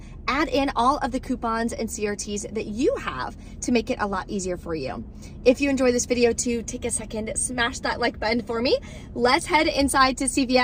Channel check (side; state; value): both; identical; correlation 1.00